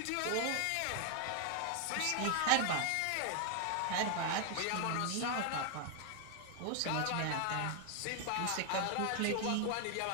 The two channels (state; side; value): different; both; correlation 0.00